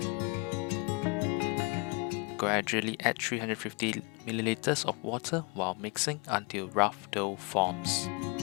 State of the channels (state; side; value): quieter; right; 30.4 dB